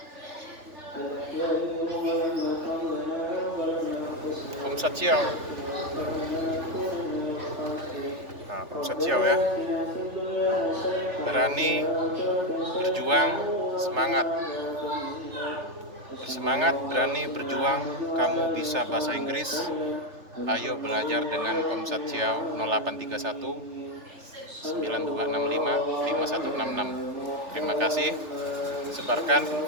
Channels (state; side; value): late; left; 3.3 ms